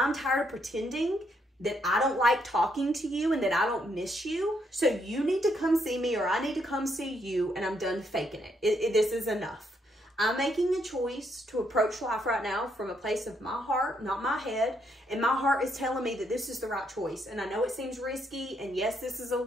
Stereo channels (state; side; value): normal; both; correlation 0.75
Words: tired of pretending that I don't like talking to you and that I don't miss you. So you need to come see me or I need to come see you, and I'm done faking it. This is enough. I'm making a choice to approach life right now from a place of my heart, not my head. And my heart is telling me that this is the right choice. And I know it seems risky. And yes, this is a